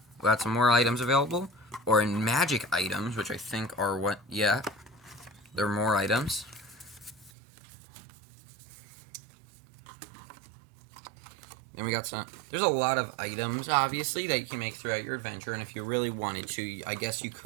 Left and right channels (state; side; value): drops out; left; at 7.3 s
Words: more items available, or in magic items, which I think are there are more items. Then we got there's a lot of items, obviously, that you can make throughout your adventure, and if you really wanted to, I guess you